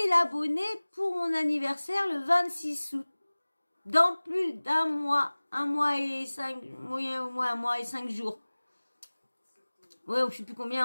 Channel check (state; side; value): inverted; both; correlation -1.00